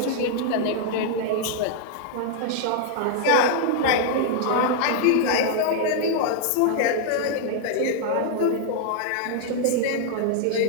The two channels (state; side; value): different; both; correlation -0.01